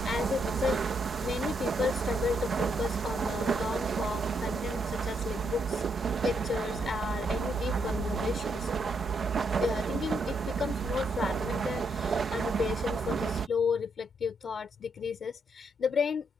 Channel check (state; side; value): normal; both; correlation 0.76